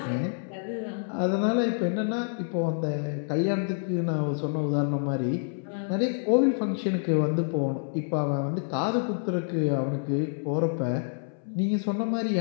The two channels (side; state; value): right; silent; 60 dB below the other